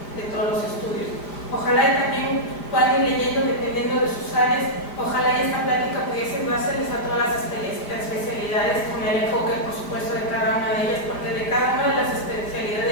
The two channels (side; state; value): right; late; 5.1 ms